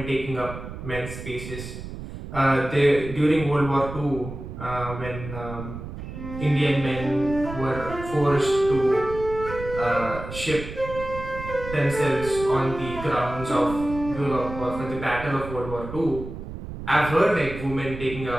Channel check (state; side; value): noise; right; rumble, 10 dB below the sound